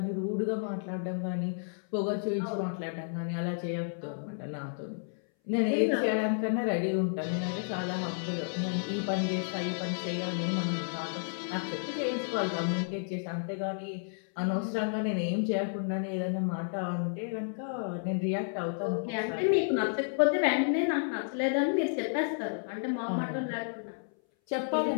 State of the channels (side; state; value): right; silent; 57 dB below the other